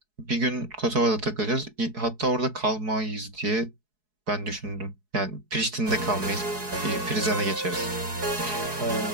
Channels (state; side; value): late; left; 4.7 ms